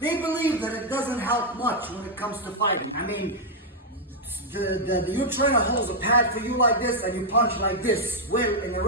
believe that it doesn't help much when it comes to fighting. I mean, your trainer holds a pad for you like this and you punch like this. Well, in a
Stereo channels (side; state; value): both; normal; correlation -0.03